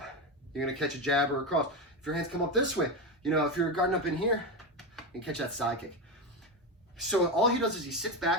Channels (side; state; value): both; normal; correlation 0.15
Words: you're going to catch a jab or a cross. If your hands come up this way, if you're guarding up in here, you can catch that side kick. So all he does is he sits